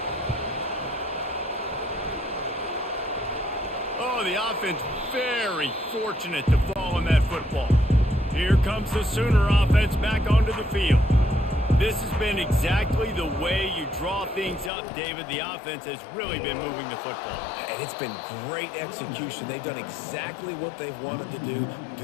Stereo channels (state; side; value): drops out; right; at 14.7 s